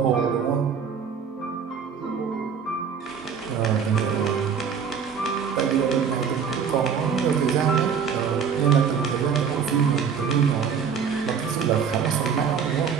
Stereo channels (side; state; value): left; quieter; 6.8 dB